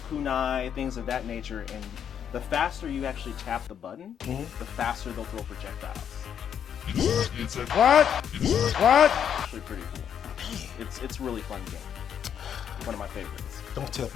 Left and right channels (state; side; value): quieter; right; 8.6 dB